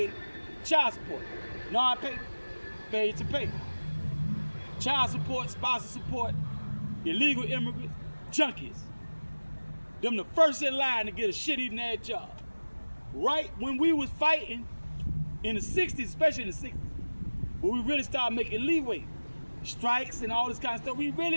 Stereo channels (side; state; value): both; inverted; correlation -1.00